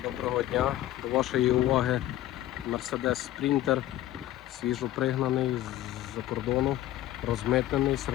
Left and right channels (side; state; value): right; quieter; 14.2 dB